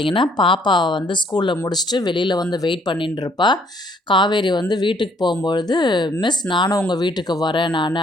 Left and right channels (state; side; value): normal; both; correlation 0.64